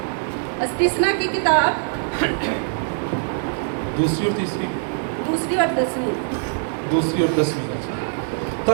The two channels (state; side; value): silent; left; digital silence